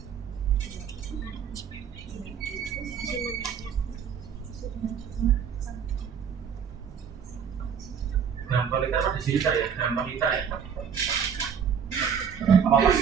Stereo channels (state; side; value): quieter; left; 7.4 dB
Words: gram per liter apa desiliter ya? Gram per liter ya? Apa